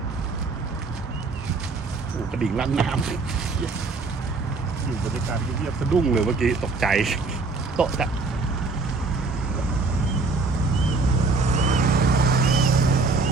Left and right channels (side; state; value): left; quieter; 3.8 dB